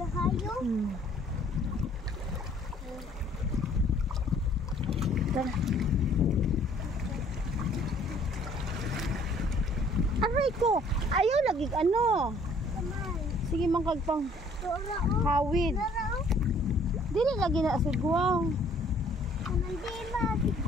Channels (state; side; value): normal; both; correlation 0.58